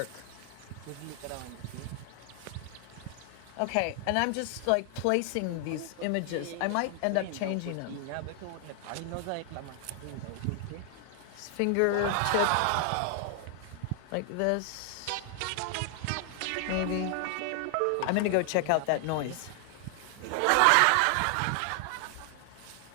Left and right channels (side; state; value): both; different; correlation 0.00